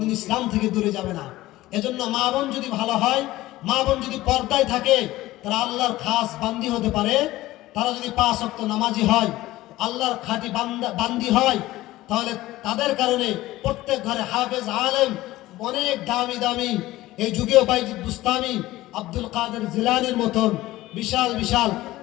ইসলাম থেকে দূরে যাবে না। এজন্য মা বোন যদি ভালো হয়, মা বোন যদি পর্দায় থাকে, তারা আল্লাহর খাস বান্দি হতে পারে। তারা যদি 5 ওয়াক্ত নামাজি হয়, আল্লাহর খাঁটি বান্দি হয়, তাহলে তাদের কারণে প্রত্যেক ঘরে হাফেজ আলেম, অনেক দামি এই যুগেও বাইজিদ বুস্তামি, আব্দুল কাদের জিলানির মতন বিশাল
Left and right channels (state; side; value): quieter; right; 17.0 dB